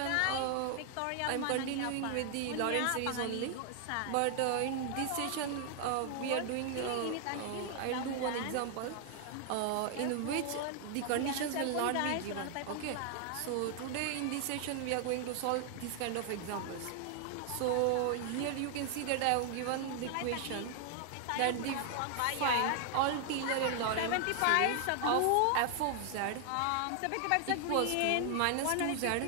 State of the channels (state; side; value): different; both; correlation 0.00